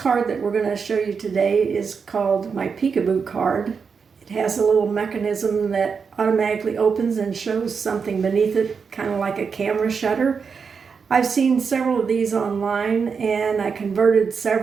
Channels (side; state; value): left; quieter; 5.8 dB